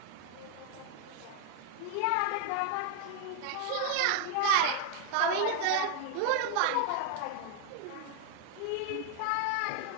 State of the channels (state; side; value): different; both; correlation 0.00